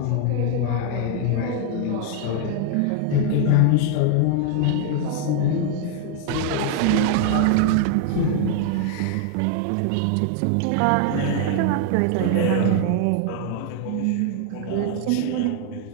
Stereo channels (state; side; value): different; both; correlation 0.00